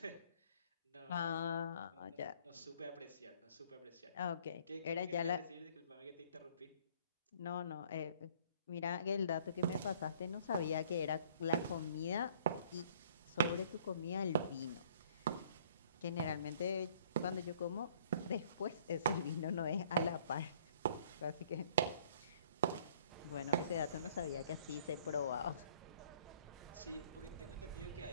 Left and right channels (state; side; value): inverted; both; correlation -0.57